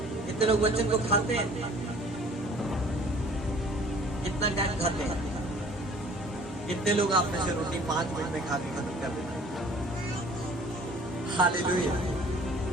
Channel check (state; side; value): normal; both; correlation 0.51